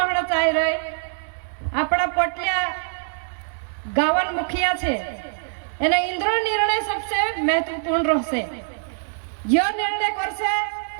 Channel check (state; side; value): silent; left; digital silence